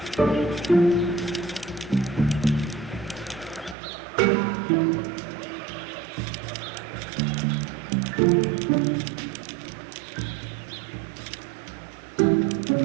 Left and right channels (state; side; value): drops out; left; at 3.8 s